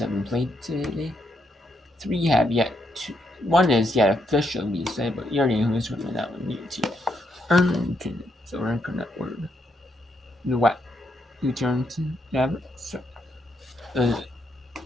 have been played today. 3 have yet to. 1 is yet officially decided, but you already know who's going to win that one. UT Arlington. So we're going to word. The what? UT Arlington. Yeah, so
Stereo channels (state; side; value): normal; both; correlation 0.77